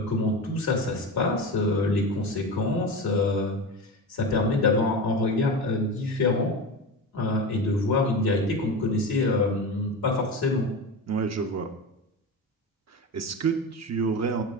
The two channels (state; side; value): normal; both; correlation 0.24